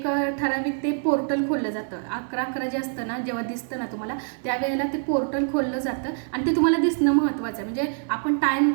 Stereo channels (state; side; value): silent; left; digital silence